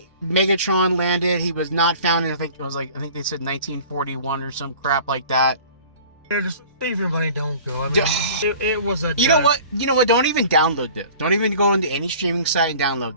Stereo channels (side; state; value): both; inverted; correlation -0.46